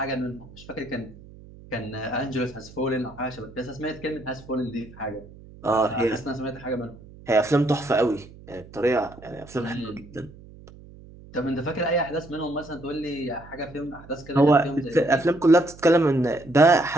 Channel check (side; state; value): right; noise; hum, 20 dB below the sound